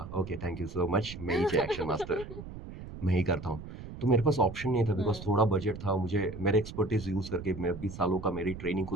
okay thank you so much, मैं ही एक्शन मास्टर मैं ही करता हूँ. तो मेरे पास ऑप्शन नहीं था बिकॉज हम्म। थोड़ा बजट था, मुझे मेरे एक्सपर्टीज यूज करके, मैं 20 सालों का मेरी ट्रेनिंग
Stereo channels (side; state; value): right; noise; rumble, 12 dB below the sound